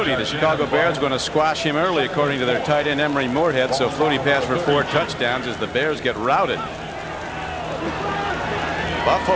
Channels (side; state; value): both; identical; correlation 1.00